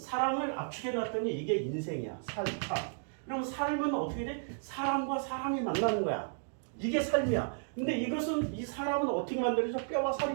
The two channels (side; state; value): left; silent; digital silence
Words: 압축해 놨더니 이게 인생이야. 삶. 그럼 삶은 어떻게 돼? 사람과 사람이 만나는 거야. 이게 삶이야. 근데 이 사람은 어떻게 만들어져? 뼈와 살이